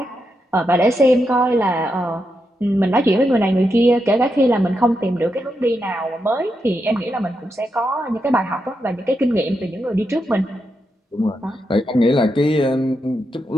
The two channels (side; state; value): both; normal; correlation 0.84